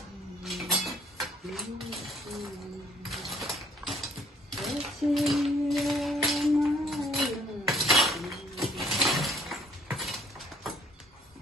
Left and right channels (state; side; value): normal; both; correlation 0.60